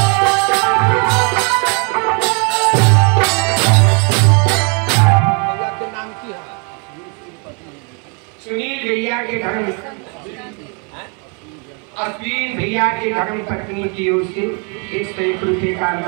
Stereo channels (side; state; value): left; quieter; 35.7 dB